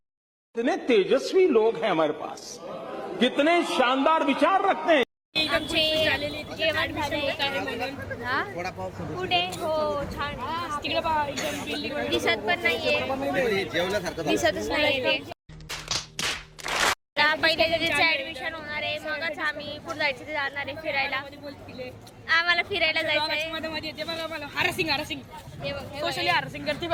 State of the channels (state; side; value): identical; both; correlation 1.00